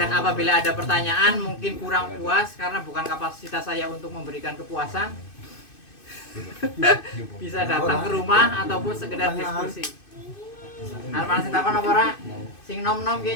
apabila ada pertanyaan mungkin kurang puas karena bukan kapasitas saya untuk memberikan kepuasan. Bisa datang ke rumah ataupun sekedar diskusi. Arep sing takon apa ora? Sing nom-nom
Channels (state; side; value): late; right; 2.6 ms